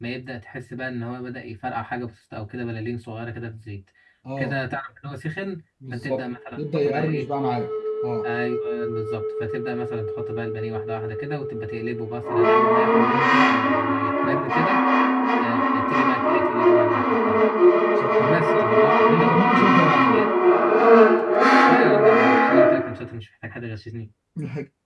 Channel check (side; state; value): both; identical; correlation 1.00